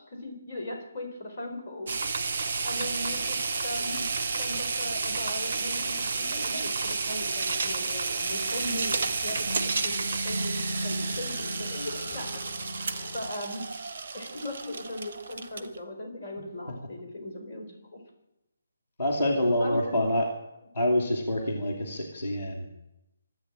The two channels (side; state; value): both; inverted; correlation -0.83